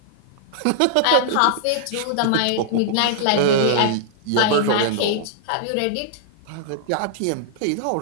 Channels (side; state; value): both; different; correlation -0.01